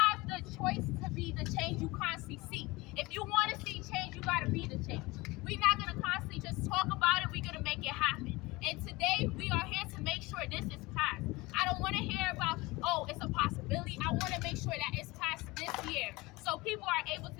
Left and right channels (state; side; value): quieter; right; 22.3 dB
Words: the choice to be the change you constantly seek. If you want to see change, you got to be the change. We're not going to constantly just talk about it. We're going to make it happen. And today, we are here to make sure this is passed. I don't want to hear about, oh, it's a possibility. I want to make sure that it's passed this year so people are able